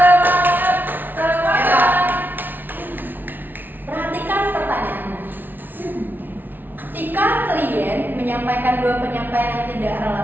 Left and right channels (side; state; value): left; late; 0.089 ms